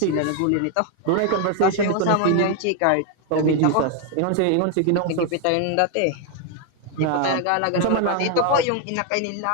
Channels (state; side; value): different; both; correlation 0.01